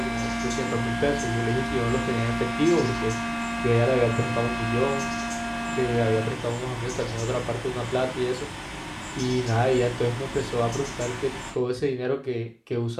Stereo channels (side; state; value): both; identical; correlation 1.00